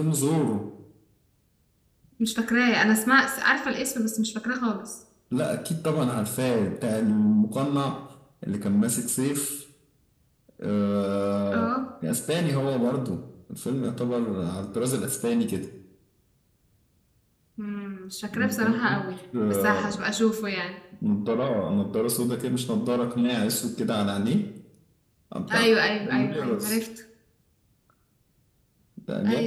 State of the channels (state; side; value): identical; both; correlation 1.00